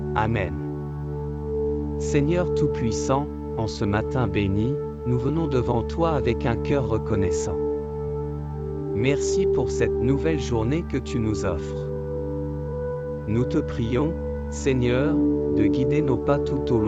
Amen. Seigneur Tout-Puissant, en ce matin béni, nous venons devant toi avec un cœur reconnaissant. Merci pour cette nouvelle journée que tu nous offres. Nous te prions, Seigneur, de guider nos pas tout au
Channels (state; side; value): identical; both; correlation 1.00